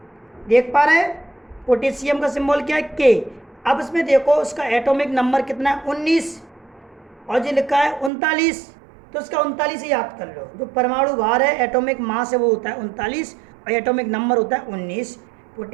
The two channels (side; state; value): left; drops out; at 8.1 s